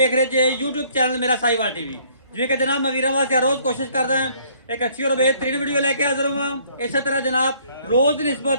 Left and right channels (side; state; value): both; inverted; correlation -0.61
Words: ਰਹੇ ਜੇ YouTube ਚੈਨਲ ਮੇਰਾ ਸਾਈਵਾਲ ਟੀਵੀ। ਜਿਵੇਂ ਕਿ ਜਨਾਬ ਮੈਂ ਵੀਰਾਂ ਵਾਸਤੇ ਰੋਜ਼ ਕੋਸ਼ਿਸ਼ ਕਰਦਾ ਹਾਂ ਇੱਕ ਅੱਛੀ ਔਰ ਬੇਹਤਰੀਨ ਵੀਡੀਓ ਲੈ ਕੇ ਹਾਜ਼ਰ ਹਾਂ। ਇਸੇ ਤਰ੍ਹਾਂ ਜਨਾਬ ਰੋਜ਼ ਦੀ ਨਿਸਬਤ